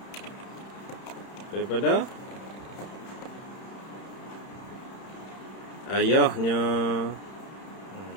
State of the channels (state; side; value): late; right; 31 ms